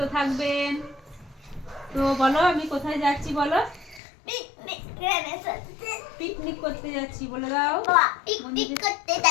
থাকবেন। তো বলো আমি কোথায় যাচ্ছি বলো? পিকনিক করে যাচ্ছি। পিকনিক করতে যাচ্ছি বলে দাও। বাবা পিকনিক করতে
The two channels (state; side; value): drops out; right; at 4.0 s